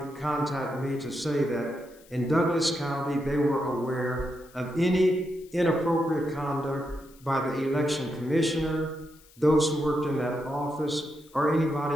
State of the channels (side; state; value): left; noise; hiss, 26 dB below the sound